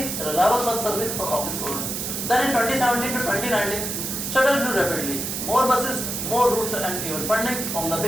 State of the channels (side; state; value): right; noise; hiss, 3 dB below the sound